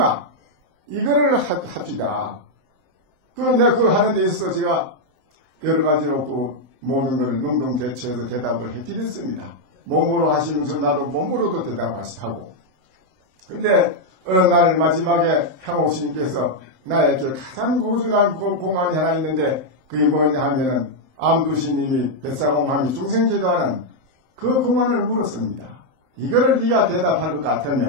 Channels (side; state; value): left; late; 7.7 ms